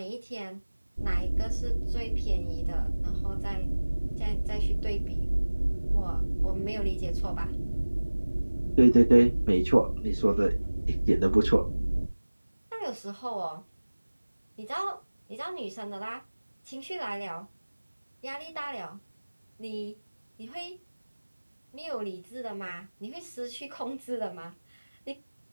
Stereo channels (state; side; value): inverted; both; correlation -1.00